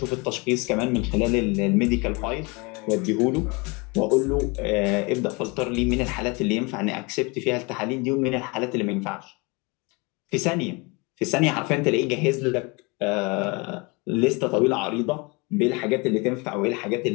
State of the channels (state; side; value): quieter; right; 28.1 dB